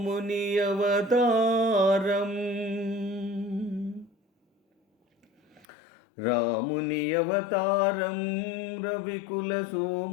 అవతారం రాముని అవతారం రవికుల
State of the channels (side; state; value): right; drops out; at 5.7 s